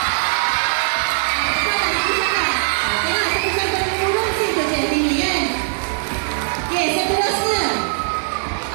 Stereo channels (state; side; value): silent; left; 65 dB below the other